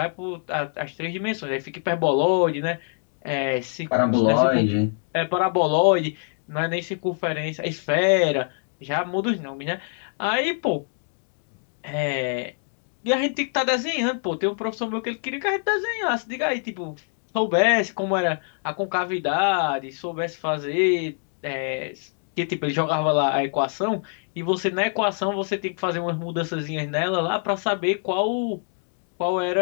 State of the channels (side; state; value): right; silent; 62 dB below the other